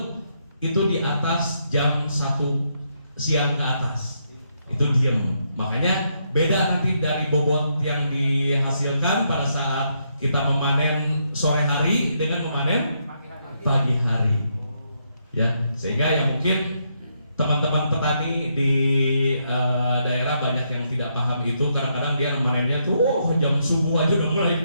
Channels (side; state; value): both; inverted; correlation -0.78